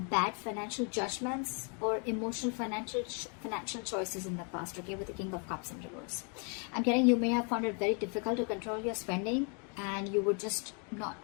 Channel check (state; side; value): quieter; right; 37.5 dB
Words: bad financial judgments or emotional financial choices in the past. Okay, with the King of Cups in reverse, I'm getting you may have found it very difficult to control your spending, and you were just